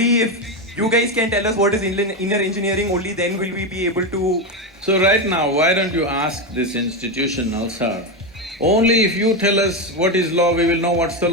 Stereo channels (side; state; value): both; normal; correlation 0.12